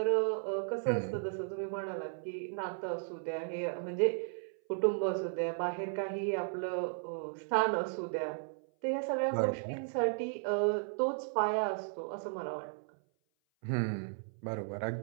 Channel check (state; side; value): silent; left; 54 dB below the other